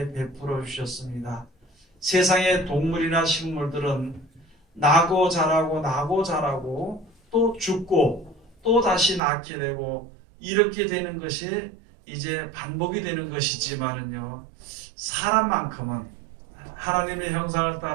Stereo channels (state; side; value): drops out; left; at 9.2 s